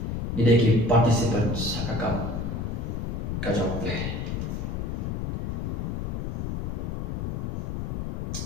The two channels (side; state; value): left; noise; rumble, 2 dB below the sound